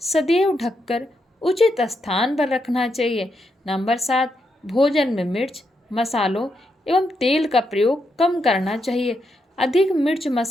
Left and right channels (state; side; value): normal; both; correlation 0.81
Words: सदैव ढककर उचित स्थान पर रखना चाहिए। नंबर 7 भोजन में मिर्च, मसालों एवं तेल का प्रयोग कम करना चाहिए। अधिक मिर्च